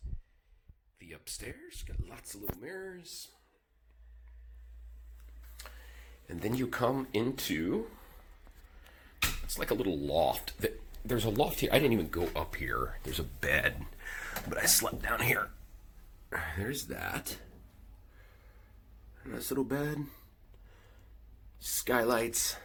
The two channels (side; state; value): both; identical; correlation 1.00